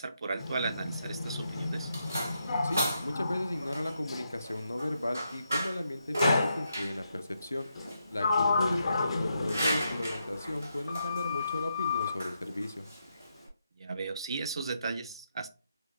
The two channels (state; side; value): inverted; both; correlation -0.82